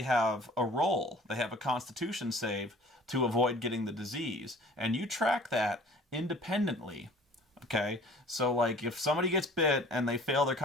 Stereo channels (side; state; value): both; normal; correlation 0.49